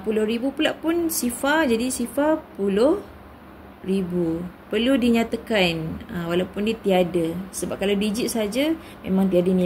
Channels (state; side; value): identical; both; correlation 1.00